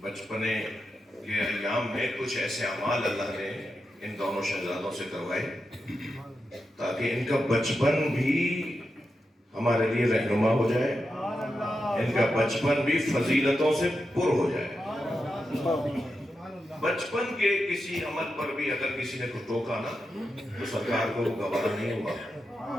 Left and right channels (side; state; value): both; normal; correlation 0.88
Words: کے ایام میں کچھ ایسے اعمال اللہ نے ان دونوں شہزادوں سے کروائے تاکہ ان کا بچپن بھی ہمارے لیے رہنما ہو جائے، ان کا بچپن بھی فضیلتوں سے پر ہو جائے۔ بچپن کے کسی عمل پر بھی اگر کسی نے کو ٹوکا نا تو سرکار کو وہ گوارا نہیں ہوا،